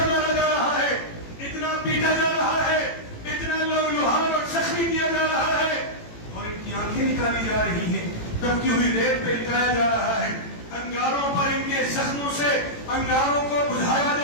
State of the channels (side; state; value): right; late; 18 ms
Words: مارا جا رہا ہے، اتنا پیٹا جا رہا ہے، اتنا لہوحان اور زخمی کیا جا رہا ہے، اور ان کی آنکھیں نکالی جا رہی ہیں، دبکی ہوئی ریت پہ لٹایا جا رہا ہے، انگاروں پر ان کے زخموں سے انگاروں کو بجھایا